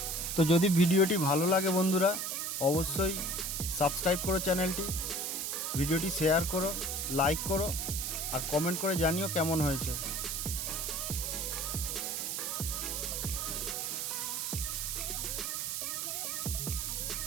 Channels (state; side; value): noise; right; hiss, 2 dB below the sound